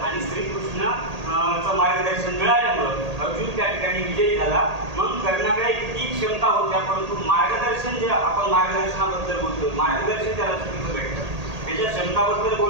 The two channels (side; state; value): left; late; 1.8 ms